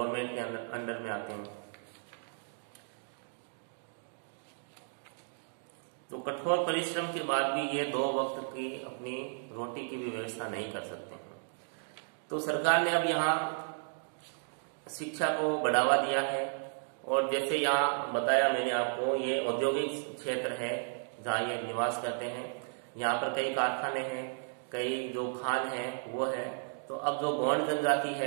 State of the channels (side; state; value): left; silent; digital silence